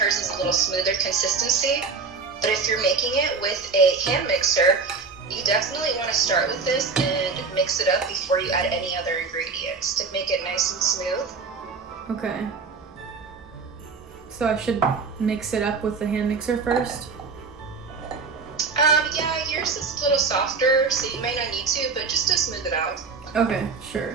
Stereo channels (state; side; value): quieter; left; 4.7 dB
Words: is a little smoother consistency. But if you're making it with a hand mixer, you definitely want to start with this and mix it up before you add any other ingredients to make it nice and smooth. Okay. So I should mix it up with the hand mixer first? Yeah, yours is a little softer, so you may not need to, but just to smooth it out. Okay,